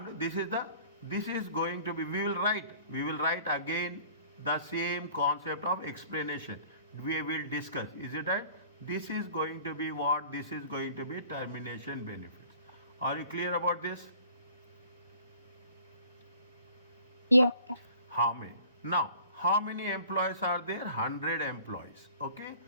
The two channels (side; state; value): both; inverted; correlation -0.50